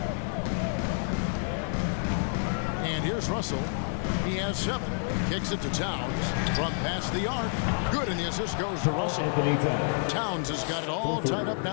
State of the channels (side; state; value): right; silent; 59 dB below the other